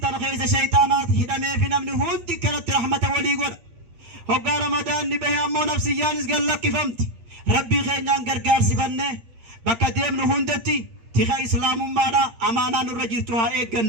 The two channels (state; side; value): late; left; 8.7 ms